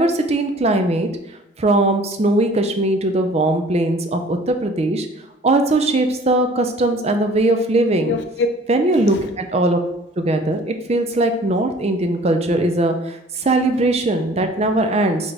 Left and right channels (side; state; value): both; normal; correlation 0.50